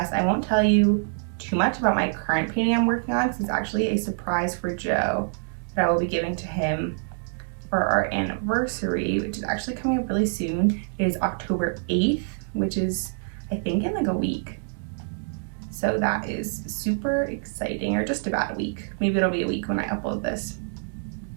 I won't tell you too much about my current painting I'm working on, because it's actually a surprise for Joe that I will be giving to him for our anniversary, which is actually coming up really soon. It is October 8th, which is I think in like a week. So that is super exciting, or just about a week. Maybe it'll be a week when I upload this.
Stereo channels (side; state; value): left; silent; digital silence